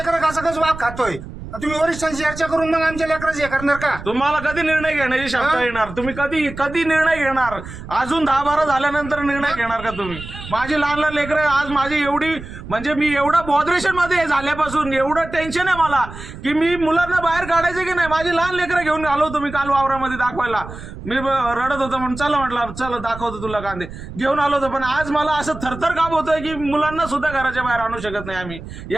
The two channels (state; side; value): noise; right; rumble, 12 dB below the sound